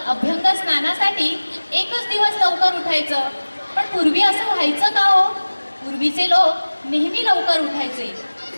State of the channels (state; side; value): inverted; both; correlation -1.00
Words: अभ्यंग स्नानासाठी एकच दिवस लवकर उठायचं. पण पूर्वी असं व्हायचं का हो? पूर्वीचे लोक नेहमी लवकर उठायचे.